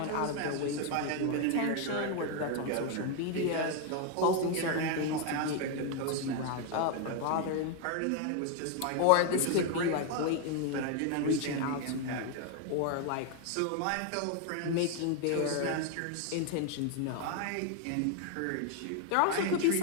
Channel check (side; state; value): both; different; correlation 0.01